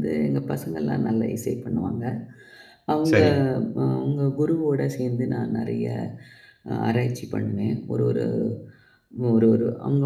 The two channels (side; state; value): both; identical; correlation 1.00